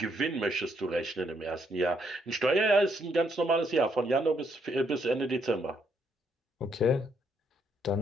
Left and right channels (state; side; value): normal; both; correlation 0.73